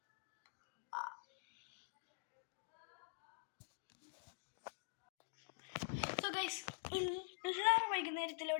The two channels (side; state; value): right; silent; digital silence